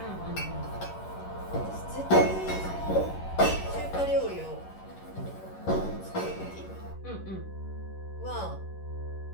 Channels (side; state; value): right; late; 11 ms